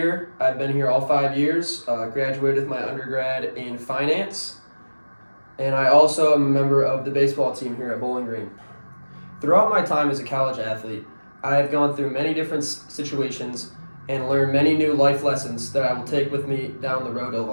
I've been here all 5 years. Graduated with my undergrad in finance. And I also am a member of the baseball team here at Bowling Green. Throughout my time as a college athlete, I have gone through many different situations and learned many new life lessons that I will take with me down the road of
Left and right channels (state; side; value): inverted; both; correlation -1.00